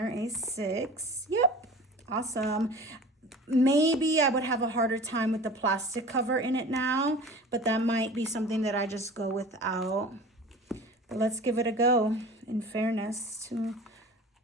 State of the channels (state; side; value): normal; both; correlation 0.39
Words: A6. Yep, awesome. Maybe I would have a harder time with the plastic cover in it now, but that might be something that I just go without. But let's give it a go, in fairness to